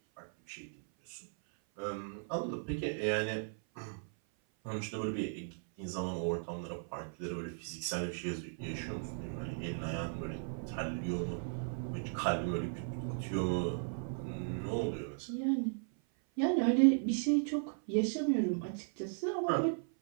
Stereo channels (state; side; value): silent; left; 53 dB below the other